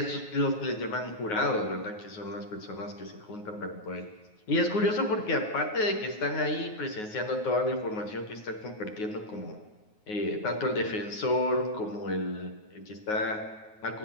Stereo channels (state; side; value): late; right; 9.4 ms